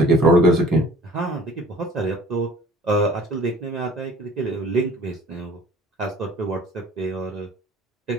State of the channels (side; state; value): both; normal; correlation 0.50